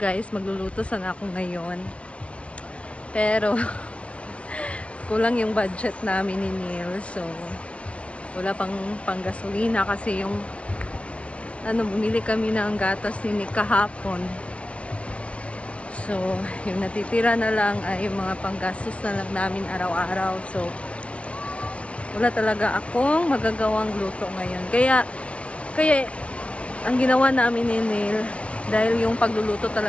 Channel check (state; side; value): late; right; 0.062 ms